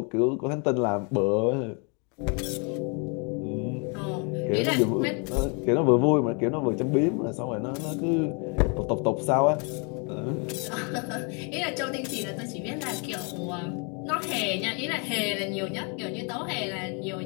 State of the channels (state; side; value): quieter; right; 35.2 dB